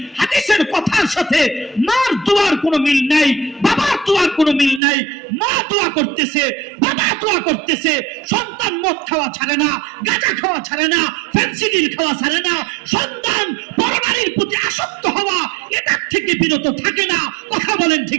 হাদিসের কথার সাথে মার দোয়ার কোনো মিল নাই, বাবার দোয়ার কোনো মিল নাই। মা দোয়া করতেছে, বাবা দোয়া করতেছে, সন্তান মদ খাওয়া ছাড়ে না, গাঁজা খাওয়া ছাড়ে না, ফেন্সিডিল খাওয়া ছাড়ে না, সন্তান পরনারীর প্রতি আসক্ত হওয়া এটার থেকে বিরত থাকে না। কথা বলেন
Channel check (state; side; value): drops out; left; at 4.8 s